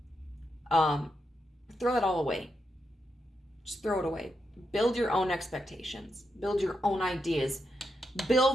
Throw that all away. Just throw it away. Build your own expectations. Build your own ideas.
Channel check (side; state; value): both; normal; correlation 0.84